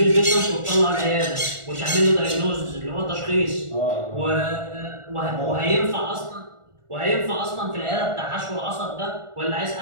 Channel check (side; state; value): left; late; 1.4 ms